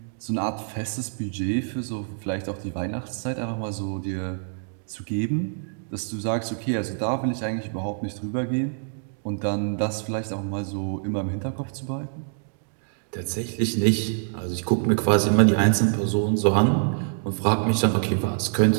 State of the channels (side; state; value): left; silent; 61 dB below the other